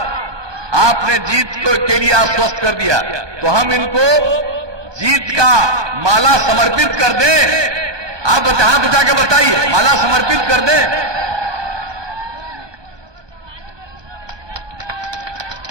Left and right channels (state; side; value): late; left; 1.2 ms